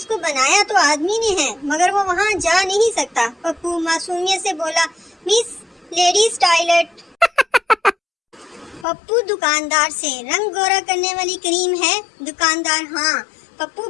बनाया तो आदमी ने है मगर वो वहाँ जा नहीं सकता। पप्पू मासूमियत से बोला, मिस लेडीज टॉयलेट। पप्पू दुकानदार से, रंग गोरा करने वाली क्रीम है? दुकानदार, हाँ। पप्पू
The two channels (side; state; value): right; drops out; at 8.8 s